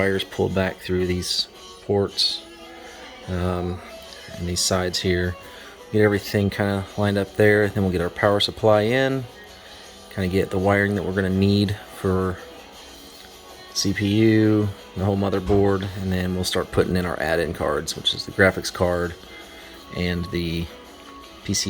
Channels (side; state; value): both; identical; correlation 1.00